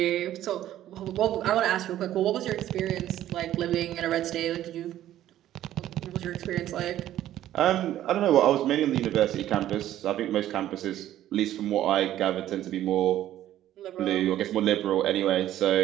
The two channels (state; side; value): quieter; left; 12.8 dB